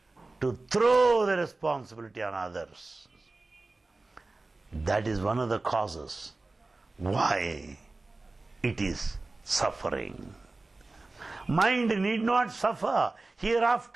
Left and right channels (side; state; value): left; quieter; 3.3 dB